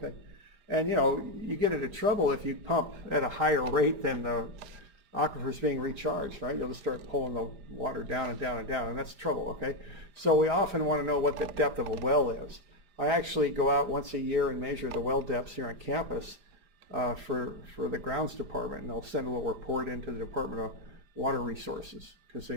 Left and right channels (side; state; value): left; late; 4.9 ms